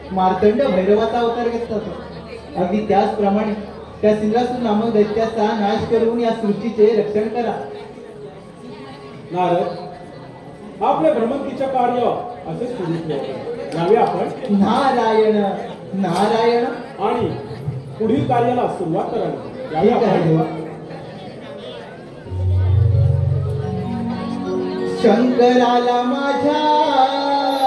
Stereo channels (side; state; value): both; identical; correlation 1.00